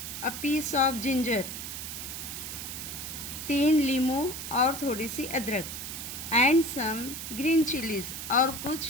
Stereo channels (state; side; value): noise; right; hiss, 7 dB below the sound